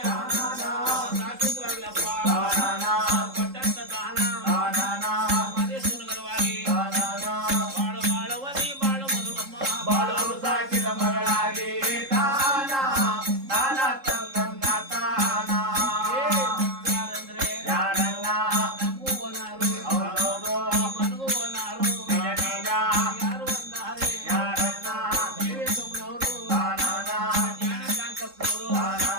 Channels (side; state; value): left; late; 3.7 ms